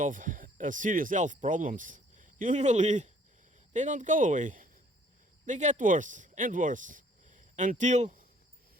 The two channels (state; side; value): normal; both; correlation 0.60